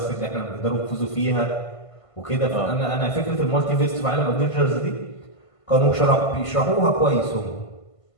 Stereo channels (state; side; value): late; right; 1.5 ms